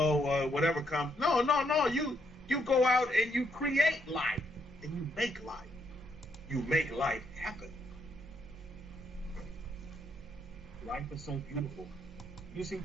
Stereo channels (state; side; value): normal; both; correlation 0.75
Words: Whatever comes. No. You go out and you create life. And you make life. You make life happen. Life is so beautiful. You see